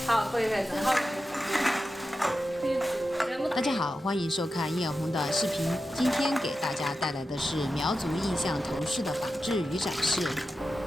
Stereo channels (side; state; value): both; normal; correlation 0.91